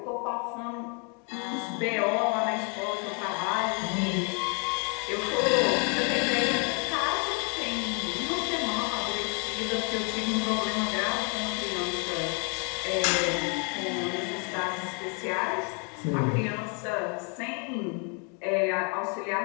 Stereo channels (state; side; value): quieter; right; 36.7 dB